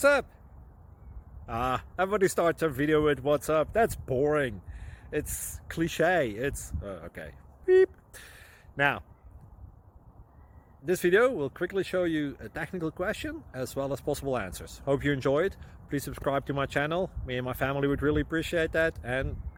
up? Everybody starts a video with what's up. That's boring. It's cliche. It's okay. Beep. Now, this video will quickly show you a technical question as well as possible answers. Hope you enjoyed. Please subscribe to my channel. Me and my family would really appreciate that, and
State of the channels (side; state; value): both; identical; correlation 1.00